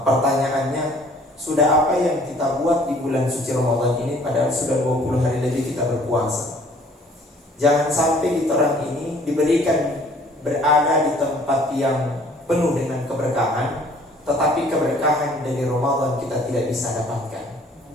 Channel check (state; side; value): normal; both; correlation 0.56